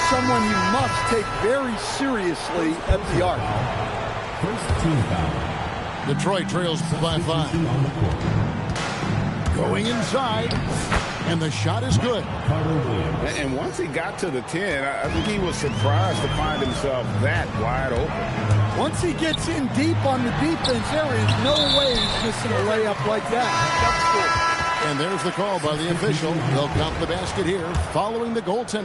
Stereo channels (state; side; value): identical; both; correlation 1.00